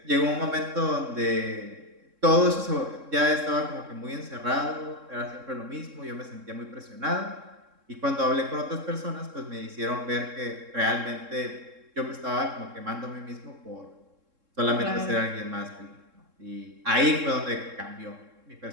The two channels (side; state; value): left; late; 3.7 ms